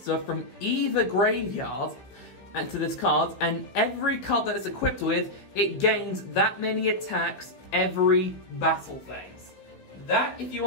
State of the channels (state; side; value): late; right; 15 ms